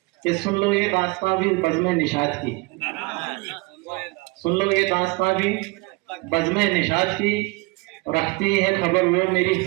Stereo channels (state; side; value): quieter; left; 26.3 dB